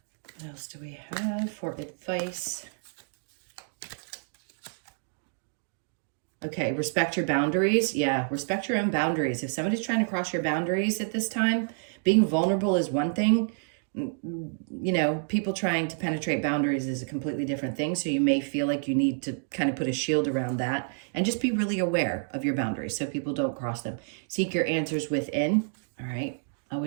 What else do we have for advice? Okay, respect your boundaries. Yeah, respect your own boundaries. If somebody's trying to cross your boundaries at this time, being vulnerable is one thing. You know, people trying to penetrate boundaries is a completely different thing. So you may feel like you need to kind of put a shield around that and just be really aware of your boundaries so people don't cross them. Seek your answers within. All right.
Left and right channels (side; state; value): left; silent; digital silence